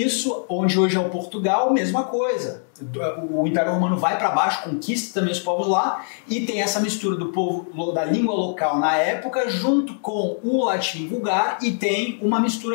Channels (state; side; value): silent; right; digital silence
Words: onde hoje é o Portugal, mesma coisa. O Império Romano vai para baixo, conquista também os povos lá e tem essa mistura do povo da língua local na época junto com o latim vulgar e tem uma